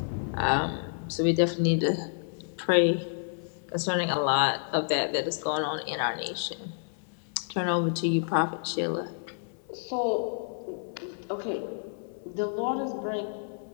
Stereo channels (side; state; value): right; silent; 58 dB below the other